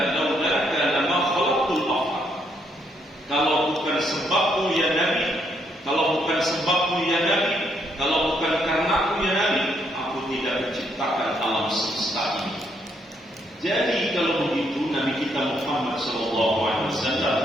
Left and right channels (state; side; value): normal; both; correlation 0.73